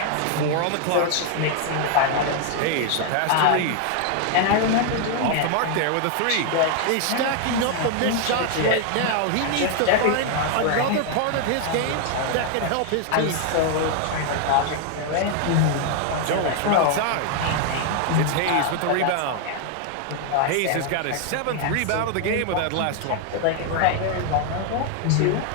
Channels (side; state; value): both; different; correlation 0.00